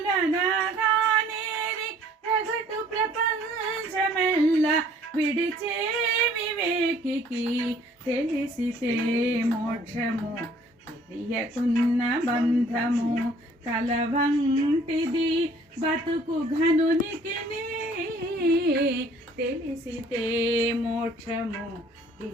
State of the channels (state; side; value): normal; both; correlation 0.57